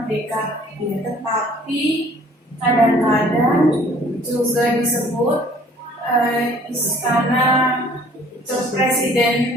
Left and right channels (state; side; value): normal; both; correlation 0.55